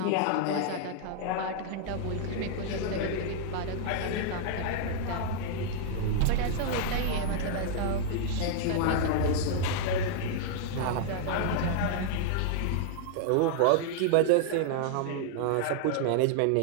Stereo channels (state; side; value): different; both; correlation 0.00